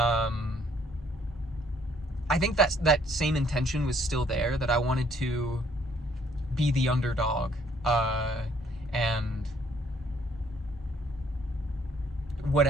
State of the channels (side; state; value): both; normal; correlation 0.65